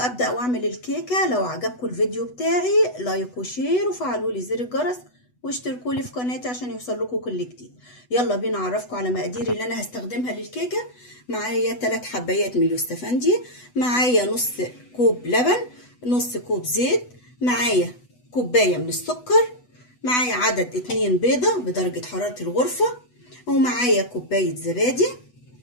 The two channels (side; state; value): right; late; 8.1 ms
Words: واعمل الكيكة، لو عجبكم الفيديو بتاعي لايك وشير وفعلوا لي زر الجرس واشتركوا لي في قناتي عشان يوصل لكم كل جديد. يلا بينا اعرفكم على مقاديري اللي انا هستخدمها للكيكة. معايا 3 حبايات من اليوستفندي، معايا نص كوب لبن، نص كوب زيت، معايا كوباية من السكر، معايا عدد 2 بيضة بدرجة حرارة الغرفة، ومعايا كوباية زبادي،